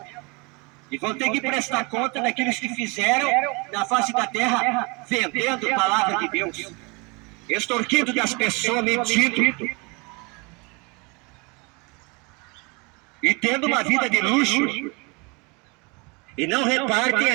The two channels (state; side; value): quieter; left; 29.2 dB